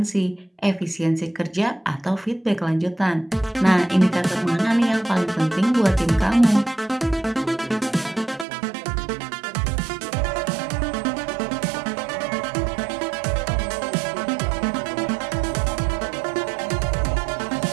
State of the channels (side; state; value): left; drops out; at 8.5 s